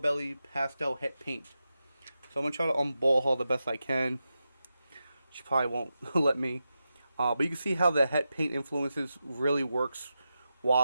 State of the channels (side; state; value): both; inverted; correlation -0.90